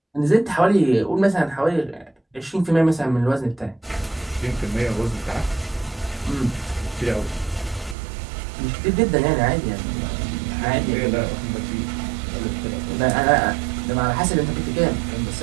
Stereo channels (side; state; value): left; drops out; at 8.0 s